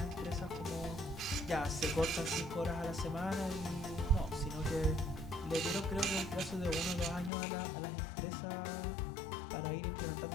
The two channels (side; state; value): right; drops out; at 7.3 s